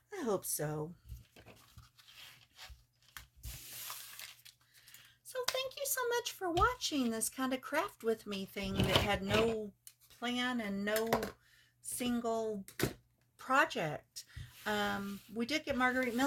I hope so. So thank you so much for watching this kind of craft with me thing that had no plan and no single project. We did get Margarete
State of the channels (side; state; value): both; identical; correlation 1.00